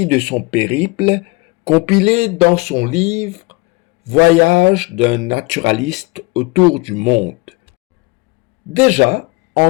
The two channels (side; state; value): right; quieter; 25.2 dB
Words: de son périple, compilé dans son livre « Voyage d'un naturaliste autour du monde ». Déjà,